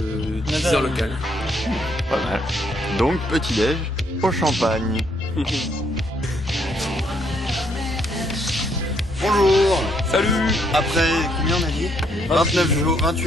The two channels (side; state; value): both; normal; correlation 0.71